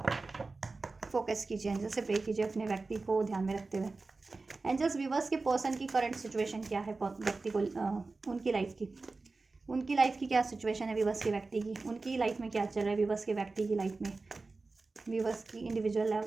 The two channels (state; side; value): quieter; left; 3.7 dB